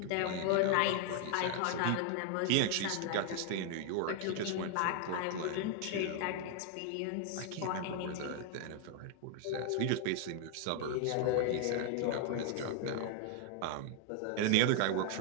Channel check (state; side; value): different; both; correlation 0.00